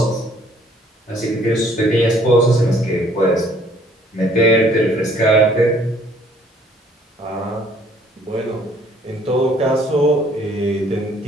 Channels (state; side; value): normal; both; correlation 0.60